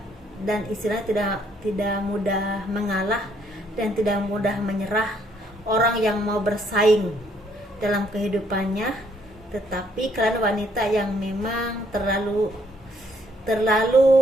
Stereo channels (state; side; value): normal; both; correlation 0.68